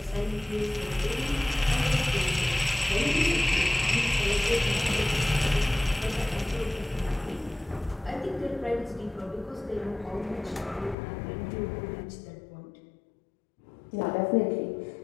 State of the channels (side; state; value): right; drops out; at 11.0 s